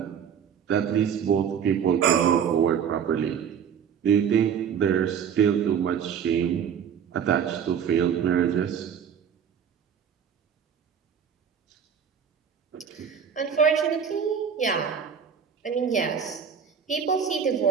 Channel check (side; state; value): left; quieter; 7.7 dB